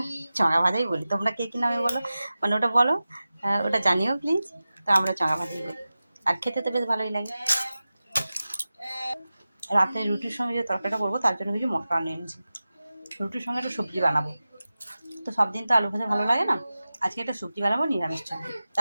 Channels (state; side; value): inverted; both; correlation -0.95